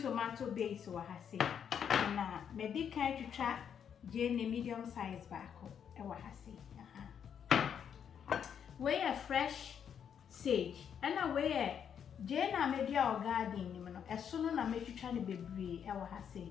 tomato base wa ha se na me di kan twitwa jeni medium size baako e wa ha se we a fresh sage and we a jena media or garden ni no eso no na metwitwa ne bebre e wa ha se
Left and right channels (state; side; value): quieter; right; 8.1 dB